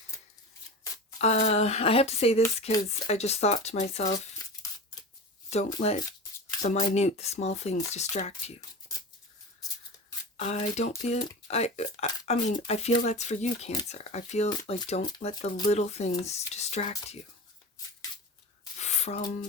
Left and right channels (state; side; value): normal; both; correlation 0.30